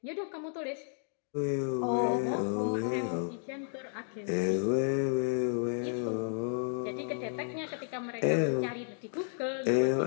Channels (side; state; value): right; silent; digital silence